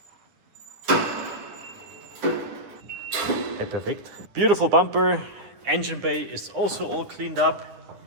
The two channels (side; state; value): left; late; 9.6 ms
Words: Okay, perfect. Beautiful bumper. Engine bay is also all cleaned up.